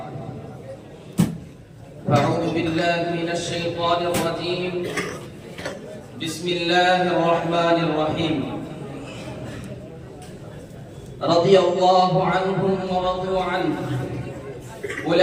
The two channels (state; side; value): identical; both; correlation 1.00